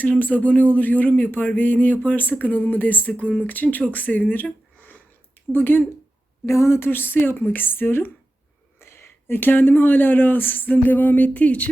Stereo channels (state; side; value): normal; both; correlation 0.93